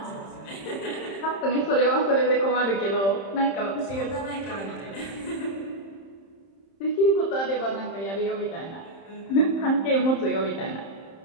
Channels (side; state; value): right; late; 31 ms